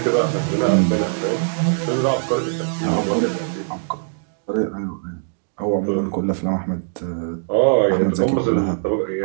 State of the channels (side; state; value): left; silent; digital silence